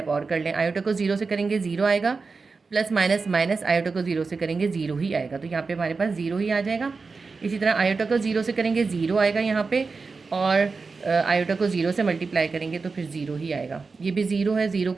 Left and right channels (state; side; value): quieter; left; 4.4 dB